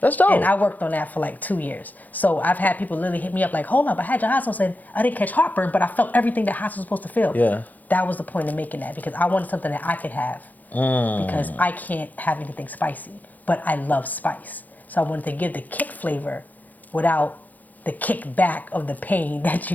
That's dope. And I worked on that for like 2 years. So I've had people literally hit me up like, hold up, I had your hot sauce and I didn't catch heartburn, but I felt everything that hot sauce was supposed to feel. Yeah. That was the point of making that, because I wanted something that I could have. Because I can't have anything spicy, but I love spice. So I wanted to give the kick flavor without the kickback of the pain that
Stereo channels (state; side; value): late; right; 0.082 ms